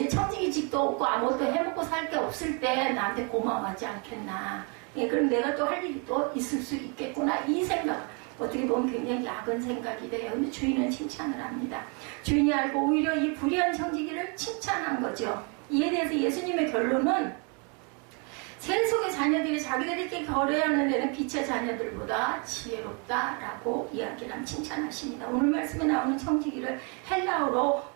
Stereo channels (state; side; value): quieter; left; 35.1 dB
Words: 청지기직도 없고 아무것도 해먹고 살 게 없을 때 나한테 고마워하지 않겠나. 그럼 내가 또 할 일이 또 있을 수 있겠구나. 이 생각. 어떻게 보면 굉장히 야근 생각이 돼요. 근데 주인은 칭찬을 합니다. 주인이 알고 오히려 이 불의한 청지기를 칭찬한 거죠. 이에 대해서 예수님의 결론은 세속의 자녀들이 자기들끼리 거래하는 데는 빛의 자녀들보다 지혜롭다라고 이야기를 칭찬하십니다. 오늘 말씀에 나오는 청지기를 헬라어로